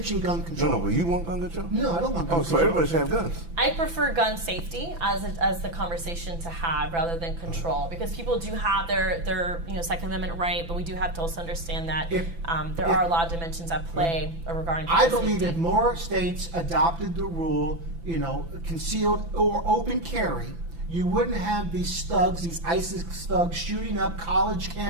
gun control. No, but you want gun control? No, I don't want gun control. So everybody should have guns. I prefer gun safety as the conversation to have rather than control, because people do have their you know, Second Amendment right, but we do have to also understand that there are a lot of dimensions at play regarding gun safety. I believe if more states adopted the rule, you know, concealed or open carry, you wouldn't have these thugs, these ISIS thugs, shooting up college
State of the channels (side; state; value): left; late; 5.9 ms